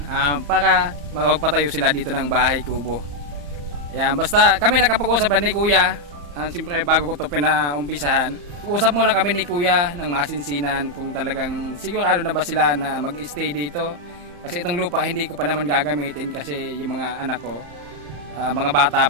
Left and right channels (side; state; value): left; late; 34 ms